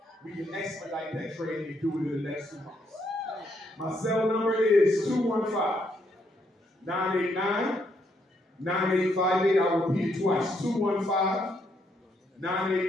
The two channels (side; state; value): both; normal; correlation 0.75